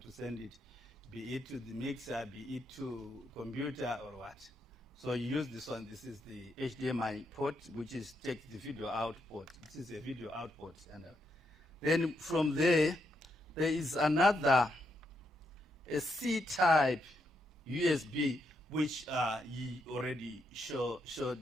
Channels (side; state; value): both; normal; correlation 0.80